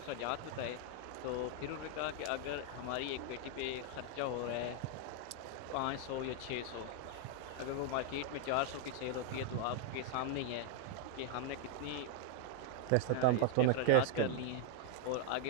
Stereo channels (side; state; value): both; different; correlation 0.00